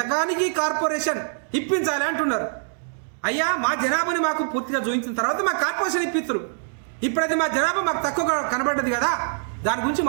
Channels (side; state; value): left; silent; 63 dB below the other